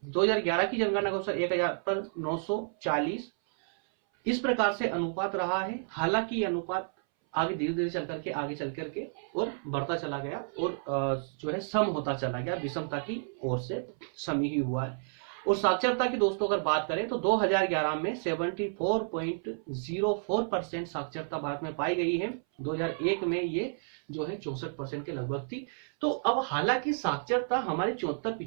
2011 की जनगणना के अनुसार 1000 पर 940। इस प्रकार से अनुपात रहा है। हालांकि अनुपात आगे धीरे धीरे चल करके और बढ़ता चला गया, और जो है सम होता चला गया, विषमता की ओर से सम ही हुआ है। और साक्षरता की दोस्तों अगर बात करें तो 2011 में 74.04% साक्षरता भारत में पाई गई है। 2001 में ये जो है 64% के लगभग थी। तो अब हालांकि साक्षरता हमारी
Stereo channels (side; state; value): left; silent; 57 dB below the other